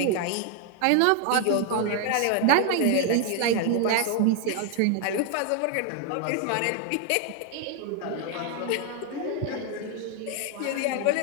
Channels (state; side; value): different; both; correlation 0.00